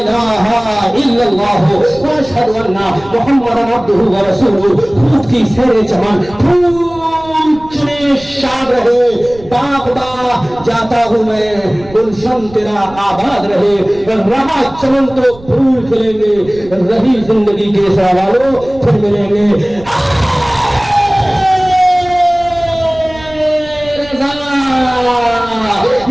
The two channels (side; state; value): right; noise; rumble, 19 dB below the sound